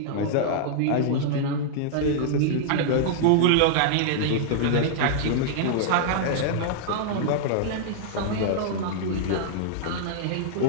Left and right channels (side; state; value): both; different; correlation -0.01